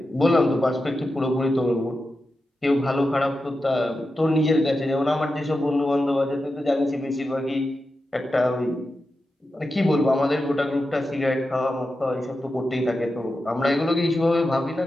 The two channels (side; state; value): both; normal; correlation 0.90